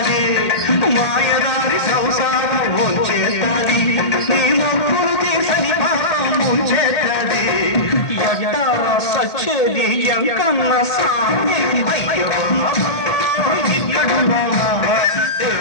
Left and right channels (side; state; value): right; late; 1.8 ms